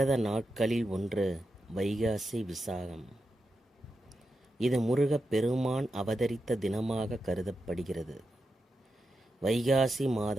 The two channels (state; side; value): normal; both; correlation 0.88